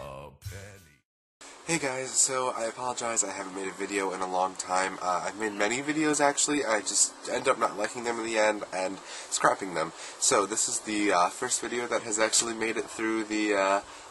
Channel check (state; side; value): identical; both; correlation 1.00